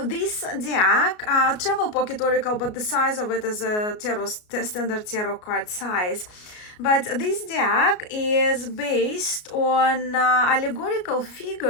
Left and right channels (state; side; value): late; right; 33 ms